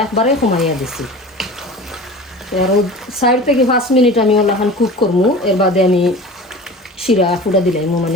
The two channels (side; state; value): both; normal; correlation 0.37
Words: একবারে কমাইয়া দিছি। আর 4 থেকে 5 মিনিট আমি ওলাখান কুক করবো, এর বাদে আমি শিরা ফুটা দিলাম,